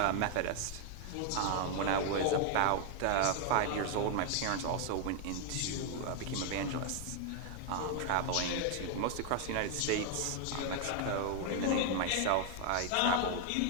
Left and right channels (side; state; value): both; different; correlation 0.00